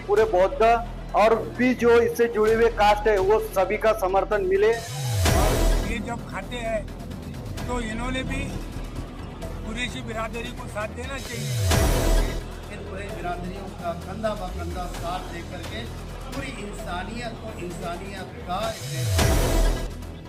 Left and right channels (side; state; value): both; identical; correlation 1.00